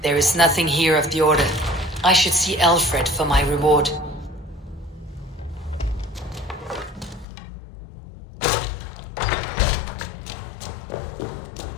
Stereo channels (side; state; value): right; drops out; at 7.2 s